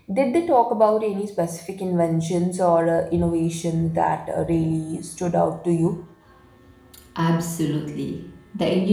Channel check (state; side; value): identical; both; correlation 1.00